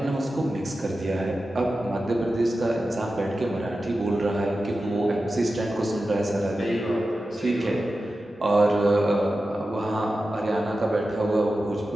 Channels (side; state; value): both; normal; correlation 0.93